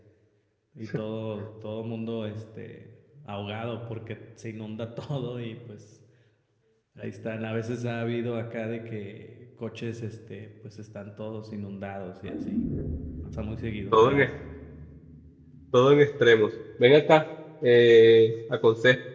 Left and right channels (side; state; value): both; identical; correlation 1.00